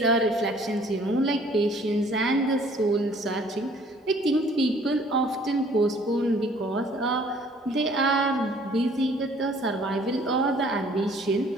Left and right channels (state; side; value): normal; both; correlation 0.57